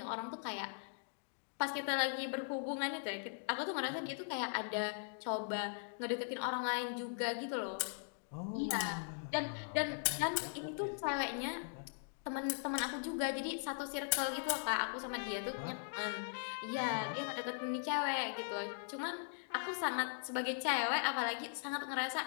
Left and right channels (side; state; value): right; silent; digital silence